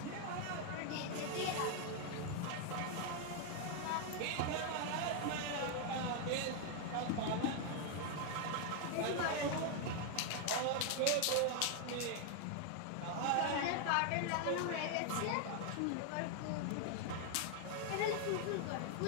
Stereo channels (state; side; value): different; both; correlation 0.00